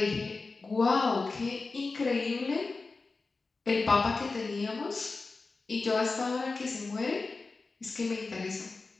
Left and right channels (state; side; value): quieter; right; 3.9 dB